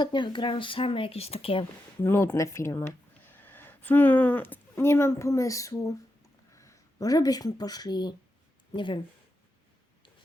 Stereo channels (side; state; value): both; normal; correlation 0.87